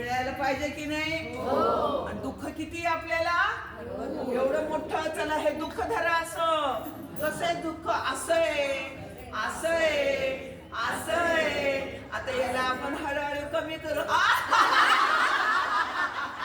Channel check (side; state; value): both; identical; correlation 1.00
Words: पाहिजे की नाही? दुःख किती आपल्याला? एवढं मोठं. चला हे दुःख धरा. असं कसं आहे दुःख? असं आहे. आता याला आपण हळूहळू कमी करू.